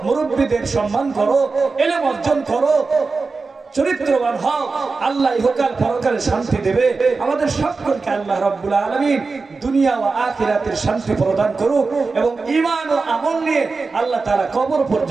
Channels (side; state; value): left; quieter; 4.2 dB